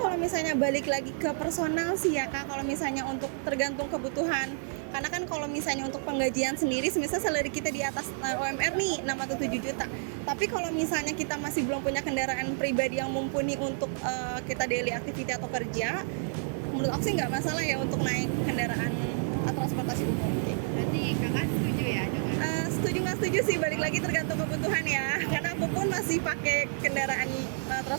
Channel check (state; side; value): silent; left; digital silence